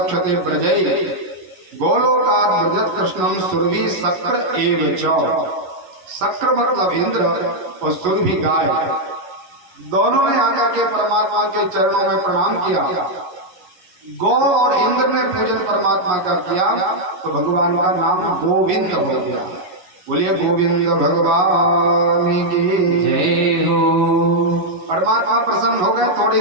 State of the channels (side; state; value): left; late; 11 ms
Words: प्रजय गोलोकात ब्रजत कृष्णम सुरभि शक्र एव च। शक्र मतलब इंद्र और सुरभि गाय, दोनों ने आकर के परमात्मा के चरणों में प्रणाम किया। गौ और इंद्र ने पूजन परमात्मा का किया तो भगवान का नाम गोविंद हो गया। बोलिए गोविंद भगवान की जय हो। परमात्मा प्रसन्न हो गए थोड़ी